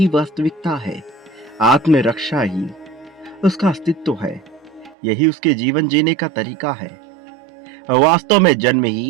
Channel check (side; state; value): left; drops out; at 5.0 s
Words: वास्तविकता है, आत्मरक्षा ही उसका अस्तित्व है, यही उसके जीवन जीने का तरीका है। वास्तव में जन्म